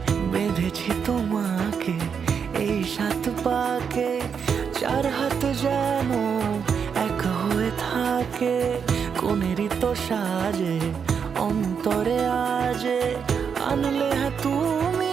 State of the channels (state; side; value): quieter; left; 6.7 dB